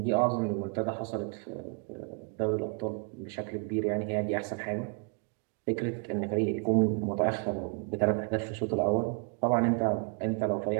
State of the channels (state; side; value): quieter; left; 37.2 dB